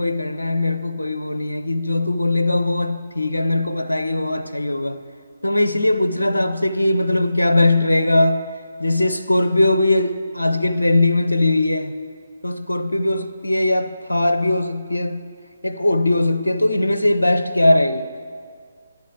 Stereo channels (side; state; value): both; inverted; correlation -0.92